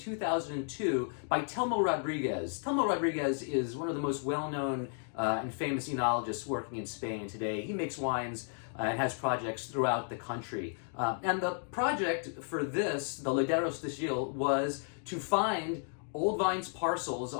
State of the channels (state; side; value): silent; right; 55 dB below the other